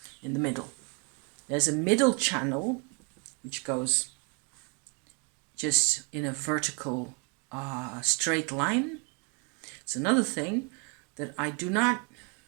In the middle. There's a middle channel which goes just in a vertical, straight line. It's another thing that I do not,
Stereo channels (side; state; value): left; quieter; 34.7 dB